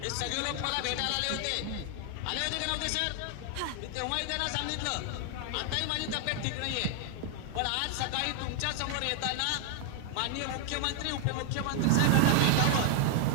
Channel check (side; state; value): both; different; correlation 0.00